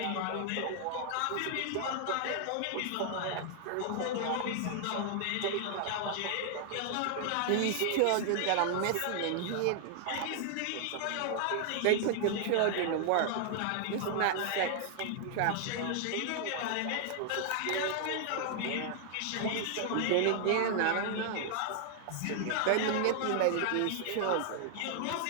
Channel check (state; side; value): different; both; correlation 0.00